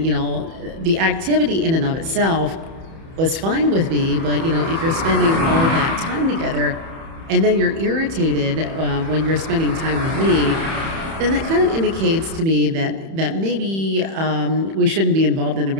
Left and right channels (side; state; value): left; late; 31 ms